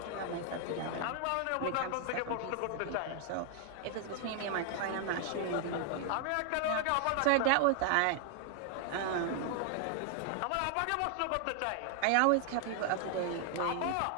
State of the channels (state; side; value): different; both; correlation 0.00